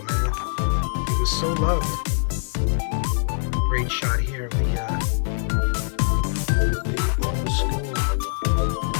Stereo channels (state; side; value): silent; right; 59 dB below the other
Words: man. He was so loved. Great shot here of the old school.